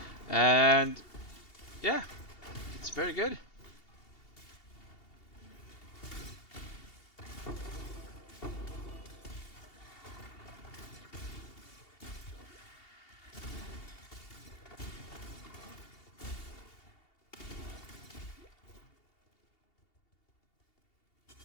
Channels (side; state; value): right; late; 2.8 ms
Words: And yeah, it's very good.